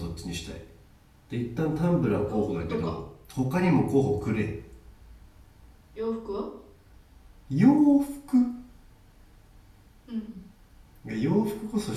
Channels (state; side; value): identical; both; correlation 1.00